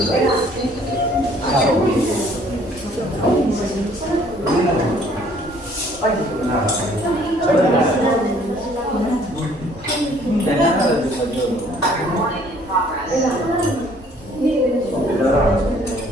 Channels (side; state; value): both; normal; correlation 0.59